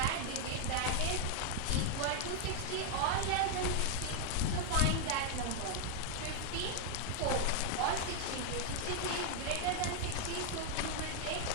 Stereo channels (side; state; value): both; different; correlation 0.00